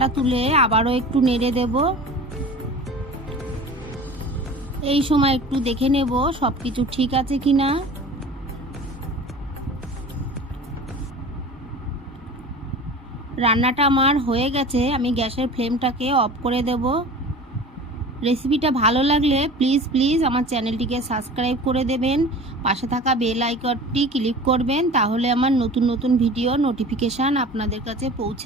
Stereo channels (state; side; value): normal; both; correlation 0.39